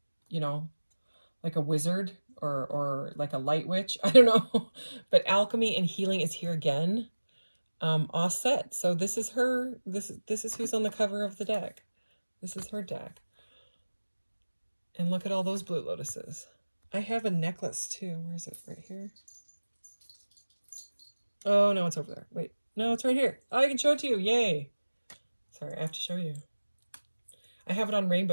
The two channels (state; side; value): inverted; both; correlation -1.00